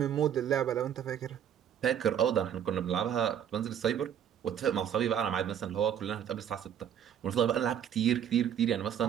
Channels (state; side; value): quieter; left; 9.3 dB